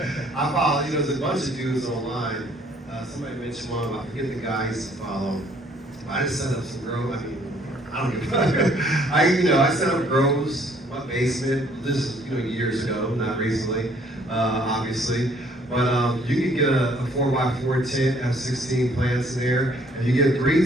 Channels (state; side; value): normal; both; correlation 0.61